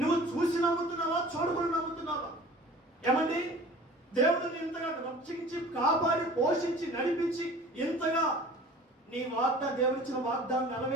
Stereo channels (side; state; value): both; normal; correlation 0.44